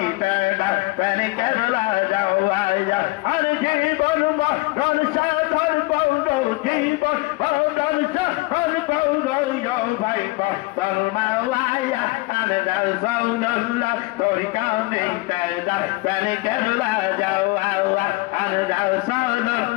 দাদা তানে কেবলা যাও আয়া আর জীবন মরণ সাধন পৌর জীবন মরণ সাধন পৌর ভাই মাওলায়া আর রাসূলুল্লাহ তোরি কানে দাদা তানে কেবলা যাও আওয়া আর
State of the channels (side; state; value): right; quieter; 23.0 dB